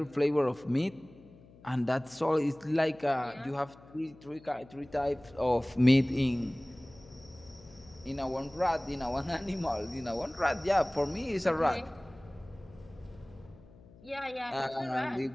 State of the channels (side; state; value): left; noise; hum, 23 dB below the sound